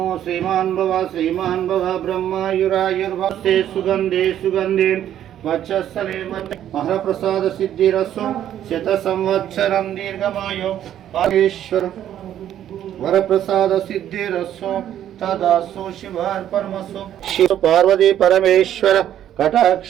శ్రీమాన్ భవ బ్రహ్మయురాయుర్భస్తే సుగంధే సుగంధే వక్షస్థలే మహాప్రసాద సిద్ధిరస్సు శత సంవత్సరం దీర్ఘమాయో పారేశ్వర వరప్రసాద సిద్ధిరస్సు తదాసు శివార్పణమస్సు. శివ పార్వతీ పరమేశ్వర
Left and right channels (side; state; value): left; quieter; 11.0 dB